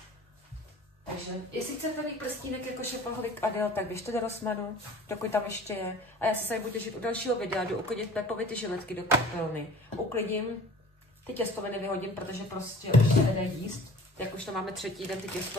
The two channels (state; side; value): normal; both; correlation 0.45